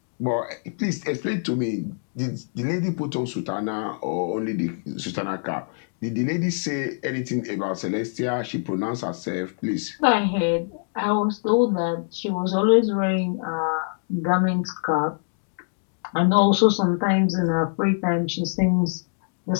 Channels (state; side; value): silent; right; digital silence